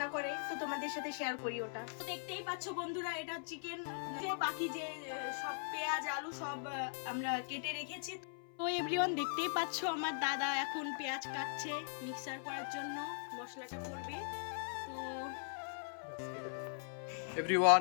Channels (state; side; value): silent; right; 51 dB below the other